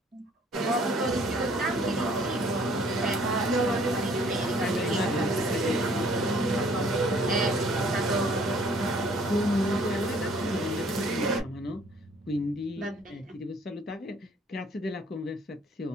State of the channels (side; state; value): both; normal; correlation 0.59